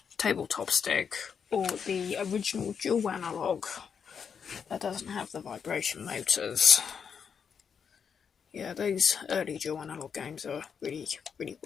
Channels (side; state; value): right; quieter; 6.8 dB